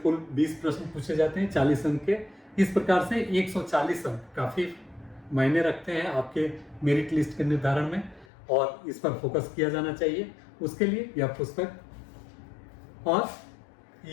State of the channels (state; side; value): drops out; right; at 8.2 s